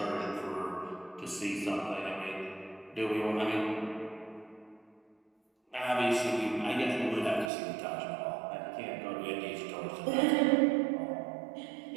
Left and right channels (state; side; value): drops out; left; at 7.5 s